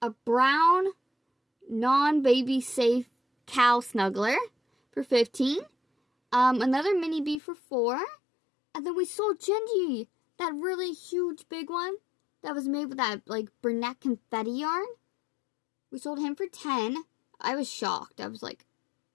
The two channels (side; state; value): right; drops out; at 7.4 s